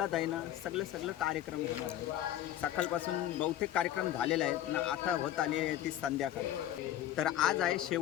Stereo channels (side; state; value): right; quieter; 12.4 dB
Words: आहे ना सगळं कार्यक्रम होणार आहे. सकाळपासून बहुतेक कार्यक्रम झालेले आहेत ना. आता होत आली आहे ती संध्याकाळ. तर आज आहे